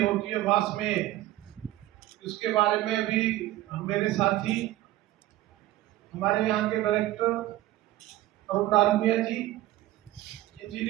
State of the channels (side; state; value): left; quieter; 15.4 dB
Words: है वास में, इसके बारे में भी मेरे साथी हमारे यहाँ के डायरेक्टर अरुण डालमिया जी,